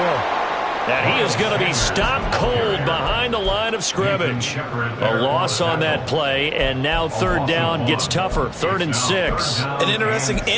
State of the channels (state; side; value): identical; both; correlation 1.00